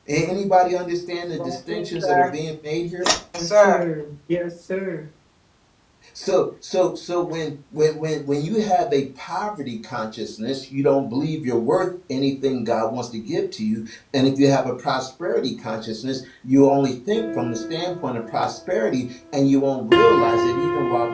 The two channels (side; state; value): both; identical; correlation 1.00